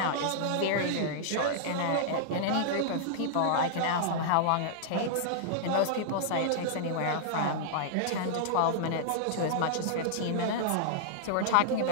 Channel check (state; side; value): different; both; correlation -0.01